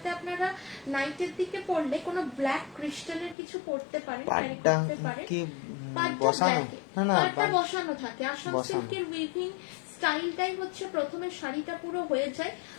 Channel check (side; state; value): right; drops out; at 3.4 s